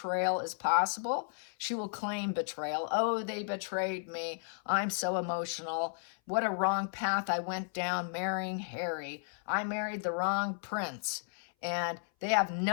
as possible. She will claim betrayal. Oh, they betrayed me. I'm so emotional. What a wrong path I went down marrying Harry. I married the wrong prince. And they have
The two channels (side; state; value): right; silent; 55 dB below the other